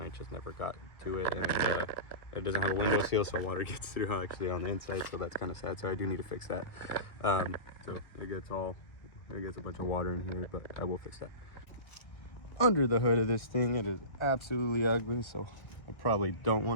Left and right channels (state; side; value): late; right; 1.9 ms